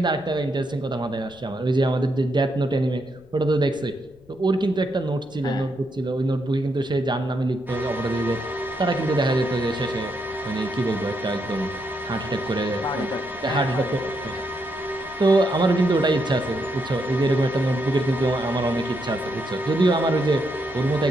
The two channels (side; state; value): left; noise; rumble, 27 dB below the sound